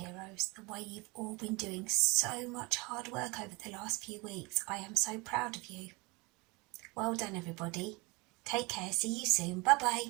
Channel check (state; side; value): quieter; left; 26.1 dB